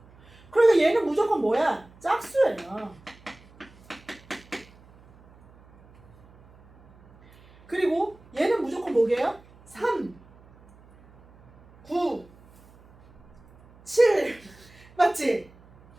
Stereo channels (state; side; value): noise; right; hum, 26 dB below the sound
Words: 그러니까 얘는 무조건 뭐야? 짝수예요. 그리고 얘는 무조건 뭐게요? 3, 9, 7 맞지?